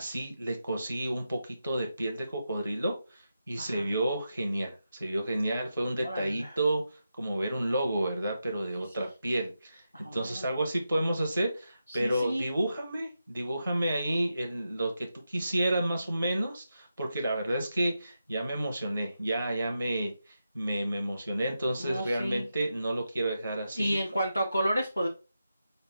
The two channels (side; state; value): both; inverted; correlation -0.88